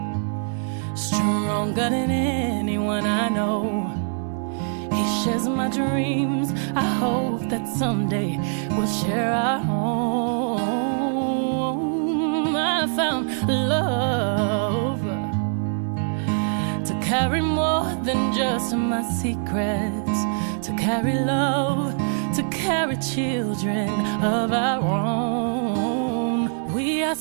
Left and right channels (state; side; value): silent; left; 63 dB below the other